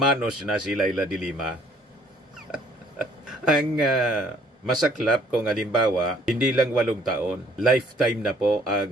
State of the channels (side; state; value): both; normal; correlation 0.60